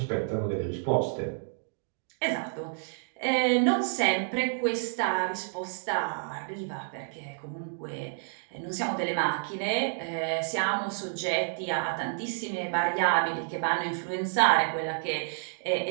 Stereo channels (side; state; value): left; silent; digital silence